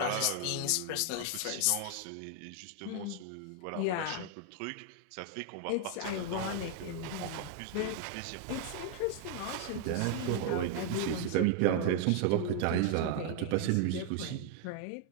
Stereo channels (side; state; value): both; different; correlation 0.00